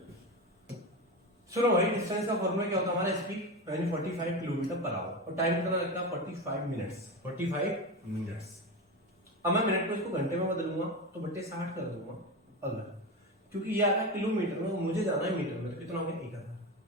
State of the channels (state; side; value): normal; both; correlation 0.20